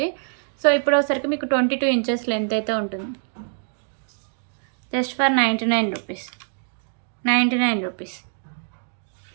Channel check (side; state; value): left; silent; digital silence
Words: సో ఇప్పుడు వచ్చరికి మీకు 22 ఇంచెస్ లెంత్ అయితే ఉంటుంది. Just for 99 rupees. 99 rupees.